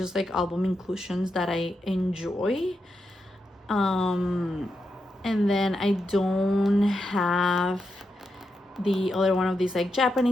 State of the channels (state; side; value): normal; both; correlation 0.86